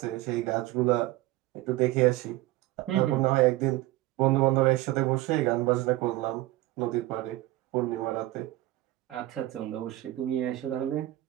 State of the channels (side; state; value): left; quieter; 17.4 dB